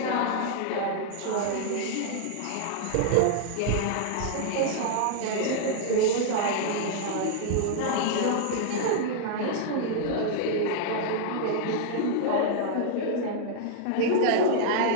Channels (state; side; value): different; both; correlation -0.01